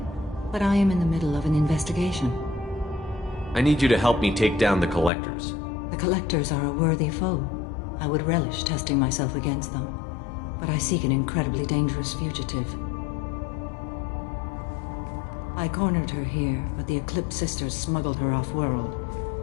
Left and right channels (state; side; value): drops out; right; at 5.1 s